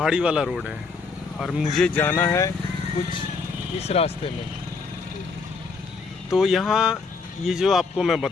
वाला रोड है और मुझे जाना है कुछ इस रास्ते में। तो यहाँ ये जो आपको मैं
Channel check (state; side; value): quieter; right; 4.6 dB